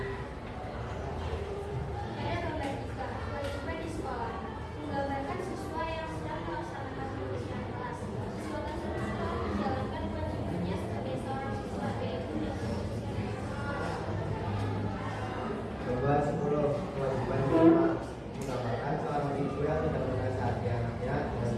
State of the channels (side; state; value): both; identical; correlation 1.00